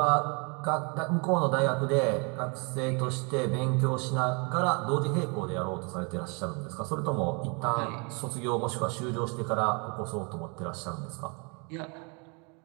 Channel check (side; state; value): left; quieter; 33.1 dB